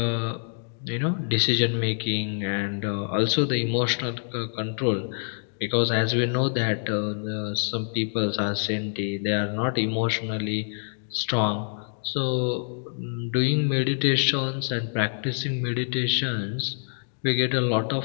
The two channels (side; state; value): right; silent; digital silence